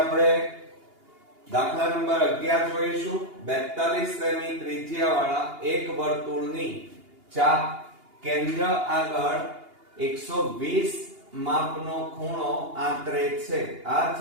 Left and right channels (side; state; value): left; late; 2.8 ms